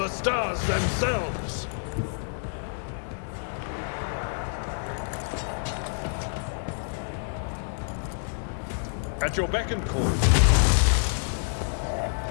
stars themselves. At your beck and call.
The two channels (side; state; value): right; silent; digital silence